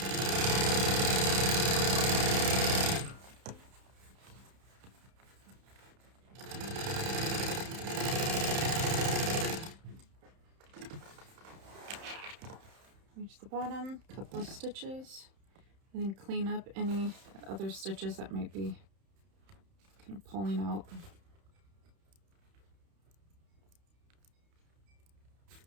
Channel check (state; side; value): late; left; 31 ms